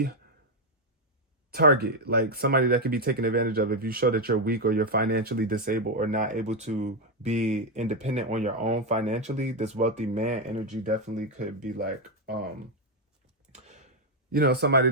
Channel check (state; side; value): normal; both; correlation 0.05